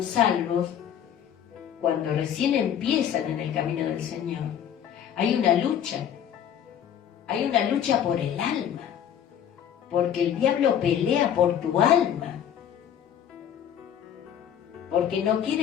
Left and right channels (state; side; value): quieter; right; 9.4 dB